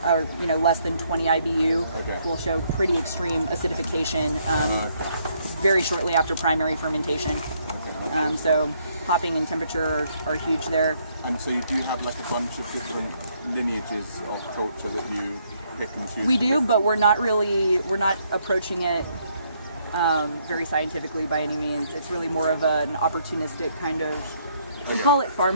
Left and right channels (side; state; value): both; inverted; correlation -0.71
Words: or less than 20 IBU, will show pretty extreme acidification very shortly after primary fermentation. So hopping and temperature are huge there. And so you do have like a bunch of different lineages of culture that you pick and choose? We do, but we're not approaching it very scientifically by any means. It's really more of an opportunistic kind of, we call it